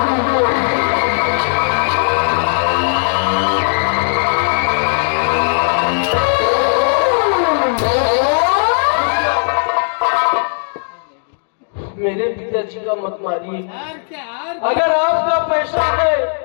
मेरे पिताजी का मत मारिए। अगर आपका पैसा है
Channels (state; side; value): silent; right; digital silence